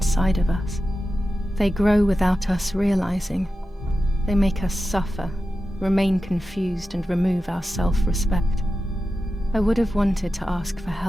of us. They grow without us realizing. They make us suffer, remain confused, and remove our self-respect. I would have wanted to ask for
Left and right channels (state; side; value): normal; both; correlation 0.92